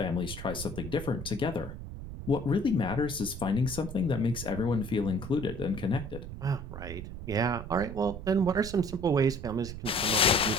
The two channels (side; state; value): right; noise; rumble, 9 dB below the sound